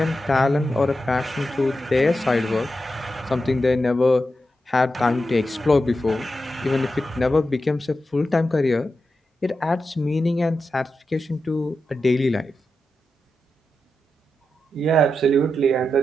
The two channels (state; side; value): normal; both; correlation 0.89